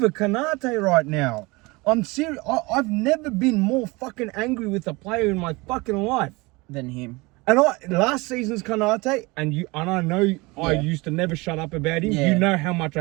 Konate right now. I'm serious. I've never been more fucking angry with a player in my fucking life. Than him. And last season's Konate, and I know I used to never shut up about him. Yeah. You know how much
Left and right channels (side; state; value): left; quieter; 24.4 dB